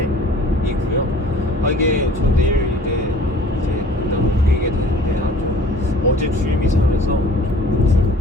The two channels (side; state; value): both; normal; correlation 0.49